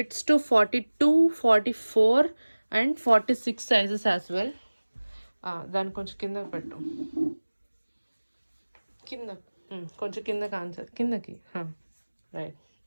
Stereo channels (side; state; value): both; inverted; correlation -1.00